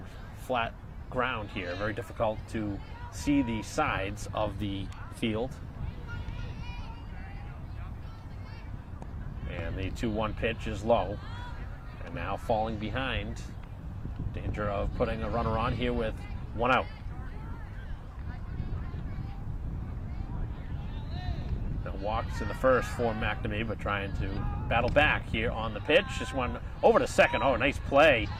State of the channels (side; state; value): both; identical; correlation 1.00